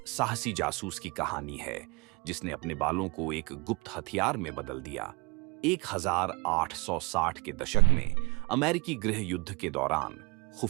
साहसी जासूस की कहानी है जिसने अपने बालों को एक गुप्त हथियार में बदल दिया। 1860 के दशक में अमेरिकी गृह युद्ध के दौरान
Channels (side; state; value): left; quieter; 27.6 dB